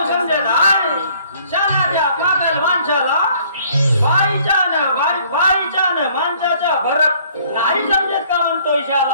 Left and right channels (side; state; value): both; inverted; correlation -0.60